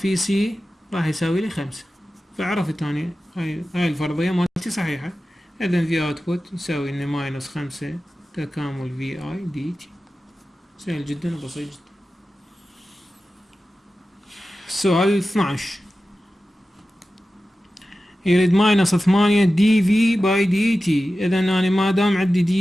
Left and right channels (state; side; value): normal; both; correlation 0.94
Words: سي راح يساوي لي 5. فعرفت اني هاي الفرضية مالتي صحيحة. اذا في اوتبوت يساوي لنا ماينس 5 تكامل في اي دي تي. سهل جدا وبسيط جدا. السؤال 12. يريد ماينس 8 دي في باي دي تي. اذا انا ما دام عندي